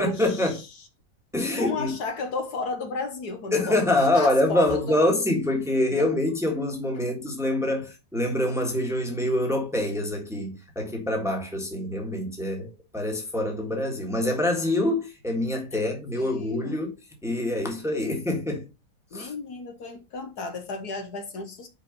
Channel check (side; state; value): both; normal; correlation 0.52